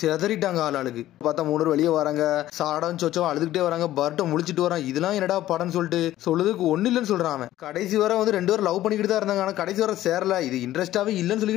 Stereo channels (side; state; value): right; quieter; 14.1 dB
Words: ஆளுக்கு. பார்த்தா மூணு வெளியே வராங்க, சாரடாவும் சோச்சோவும் அழுதுகிட்டே வராங்க. பரட்டம் முழிச்சிட்டு வரான், இதெல்லாம் என்னடா படம்னு சொல்லிட்டு சொல்லுறதுக்கு ஒண்ணு இல்லைன்னு சொல்றான். கடைசி வரை வந்து ரெண்டு பேரும் லவ் பண்ணிக்கிட்டு தான் இருந்தாங்க. ஆனா கடைசி வரை சேரல, இது இன்ட்ரெஸ்டாவே இல்லன்னு